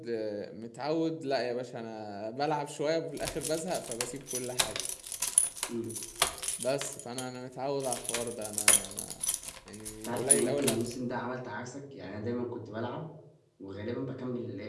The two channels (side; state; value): both; identical; correlation 1.00